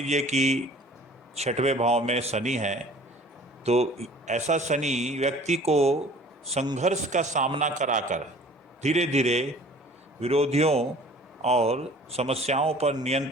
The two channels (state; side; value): normal; both; correlation 0.49